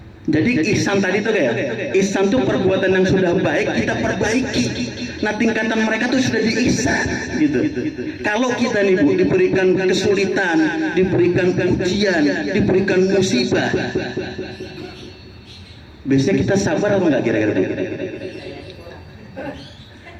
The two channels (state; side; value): identical; both; correlation 1.00